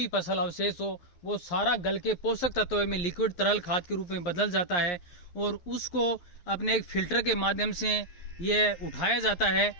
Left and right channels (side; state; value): right; late; 11 ms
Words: फसल अवशेष हो, वो सारा गल के पोषक तत्वों में लिक्विड तरल खाद के रूप में बदल जाता है और उसको अपने एक फिल्टर के माध्यम से ये उठाया जाता है